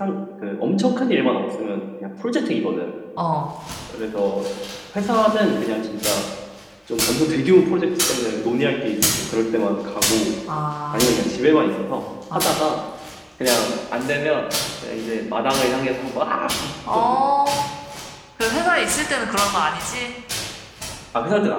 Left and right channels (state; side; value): identical; both; correlation 1.00